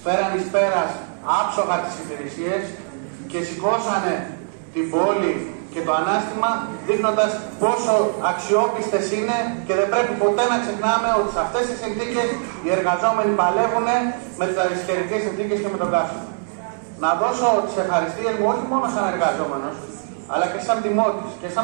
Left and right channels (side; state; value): left; silent; digital silence